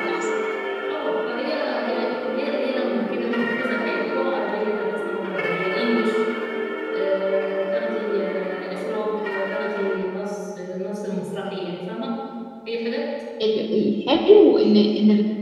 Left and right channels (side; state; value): both; identical; correlation 1.00